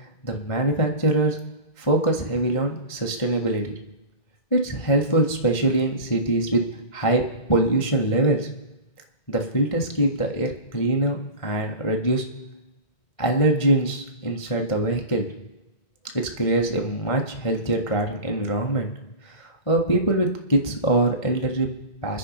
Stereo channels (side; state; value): right; late; 1.5 ms